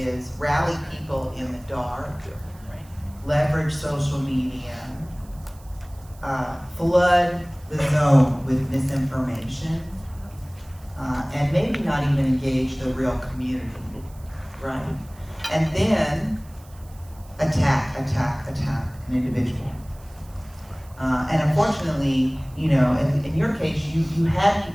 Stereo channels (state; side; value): noise; right; hiss, 26 dB below the sound